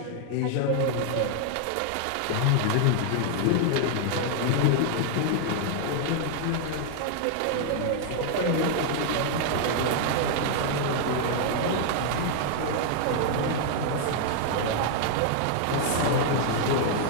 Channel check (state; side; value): different; both; correlation 0.00